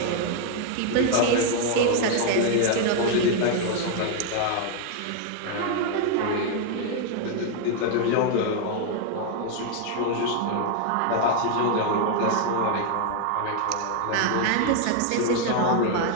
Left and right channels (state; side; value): different; both; correlation 0.00